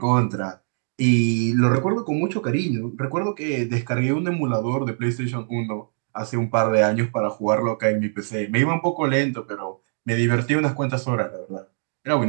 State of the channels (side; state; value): left; silent; 60 dB below the other